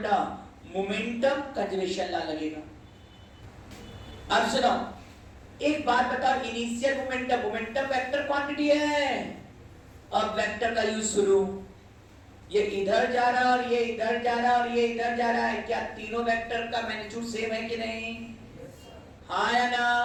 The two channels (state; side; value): identical; both; correlation 1.00